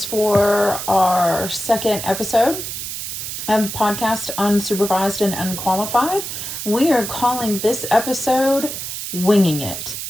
for our second episode of the podcast, Unsupervised and Unqualified. We are calling this episode Winging It.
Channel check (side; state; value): right; noise; hiss, 6 dB below the sound